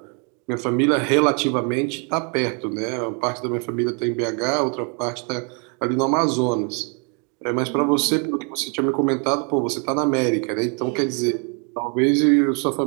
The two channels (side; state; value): left; quieter; 37.3 dB